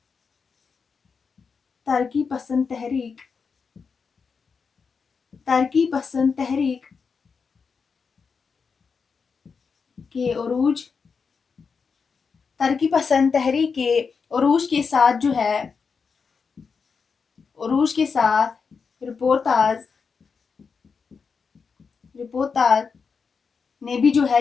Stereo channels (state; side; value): quieter; right; 5.5 dB